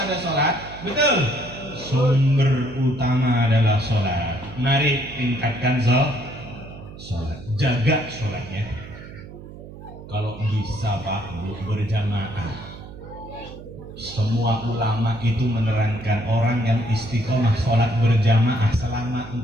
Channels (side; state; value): right; noise; hum, 15 dB below the sound